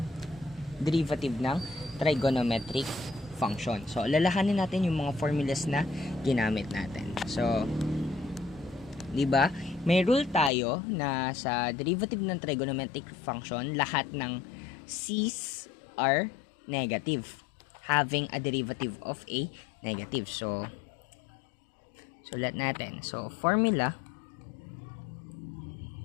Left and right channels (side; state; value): right; drops out; at 10.5 s